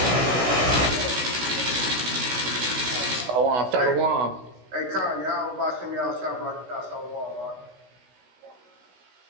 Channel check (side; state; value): left; late; 16 ms